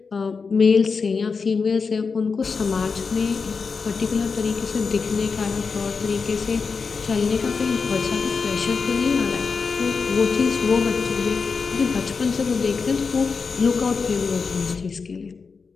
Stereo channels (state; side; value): quieter; right; 5.0 dB